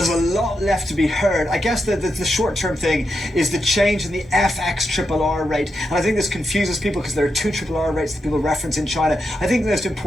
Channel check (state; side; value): normal; both; correlation 0.85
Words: a lot left to be heard. I guess the short-term thing is the change in the FX RRR rate. And I think this confuses people because there are two RRR rates that people reference in China. I think most